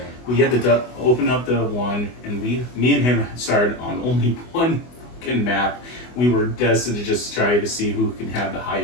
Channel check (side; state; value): right; late; 24 ms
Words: we had to open up the 1, and me and him started on only one fucking map. We were destined to just try to see who can have the